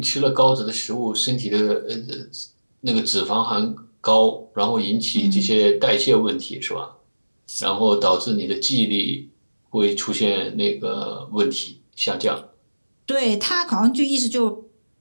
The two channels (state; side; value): inverted; both; correlation -1.00